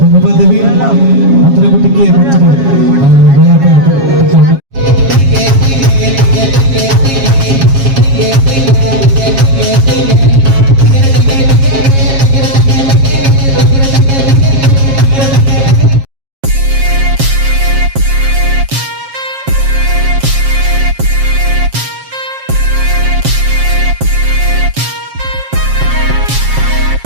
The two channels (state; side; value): late; left; 7.4 ms